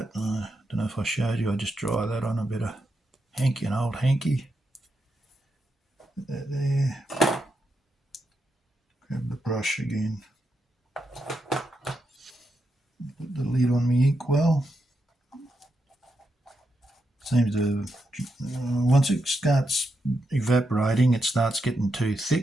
it. I don't know if I showed you, I just dry that on a bit of hanky, an old hanky. Put that there. Grab the brush again. Put the lid on my inkwell. Seems to, once it starts evaporating, it starts getting too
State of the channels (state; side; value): normal; both; correlation 0.84